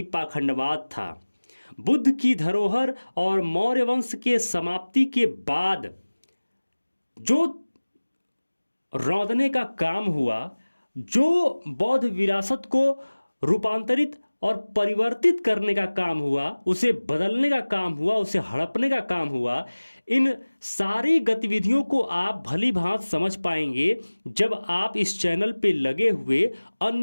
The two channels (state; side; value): inverted; both; correlation -1.00